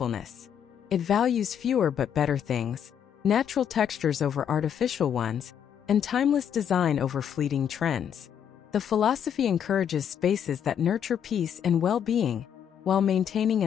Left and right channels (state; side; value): quieter; right; 8.6 dB